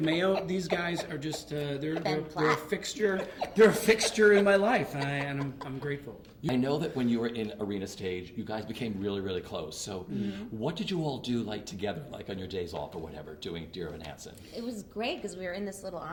Mayo. These guys are just they're a fixture. They're a fixture in my life, and I'm grateful. I know that when you were in Arena Stage, you guys became really, really close. So what did you all do together, on your days off or whatever, doing Dear Evan Hansen? It was great because we were in this little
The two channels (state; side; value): identical; both; correlation 1.00